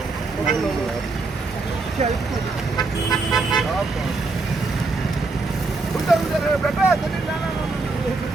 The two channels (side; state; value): left; quieter; 3.7 dB